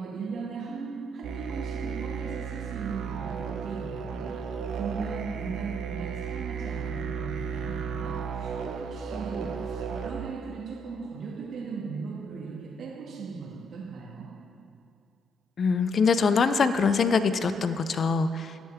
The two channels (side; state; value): both; normal; correlation 0.72